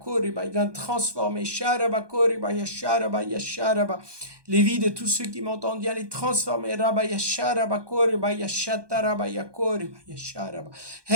Viens transformer les vies de tous ceux qui m'entendent, viens les transformer. Viens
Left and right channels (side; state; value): left; late; 1.2 ms